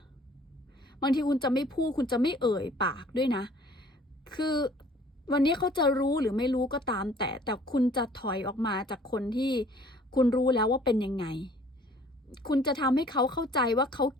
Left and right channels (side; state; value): both; normal; correlation 0.54